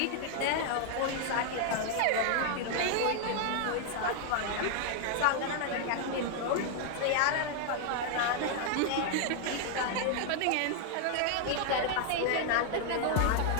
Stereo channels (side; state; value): both; different; correlation 0.00